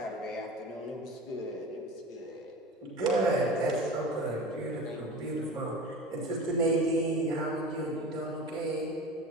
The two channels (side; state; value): both; normal; correlation 0.34